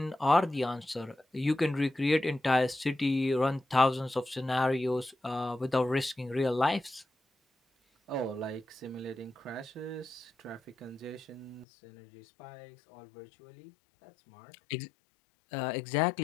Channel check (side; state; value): right; drops out; at 11.7 s